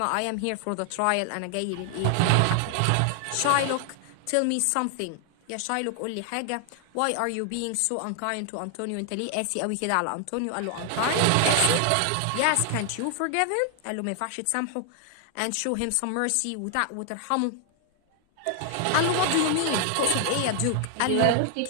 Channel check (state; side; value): different; both; correlation 0.00